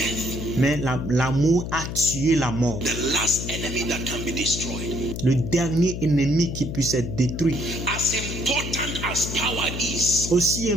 mais l'amour a tué la mort. The last enemy that can be destroyed. Le dernier ennemi qui puisse être détruit. As important as power is, Aussi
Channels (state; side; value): noise; left; hum, 6 dB below the sound